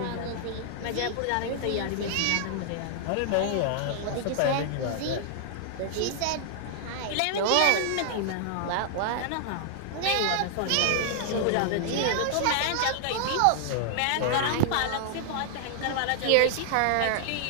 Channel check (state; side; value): different; both; correlation 0.00